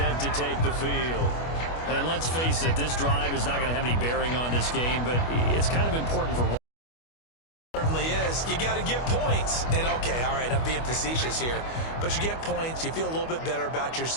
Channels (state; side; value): late; right; 25 ms